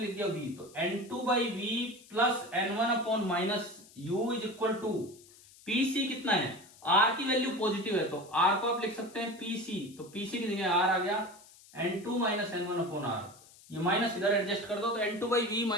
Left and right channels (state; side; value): noise; left; hiss, 23 dB below the sound